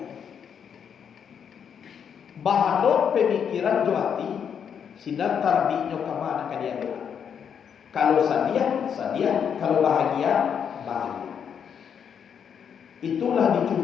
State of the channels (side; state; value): right; quieter; 7.7 dB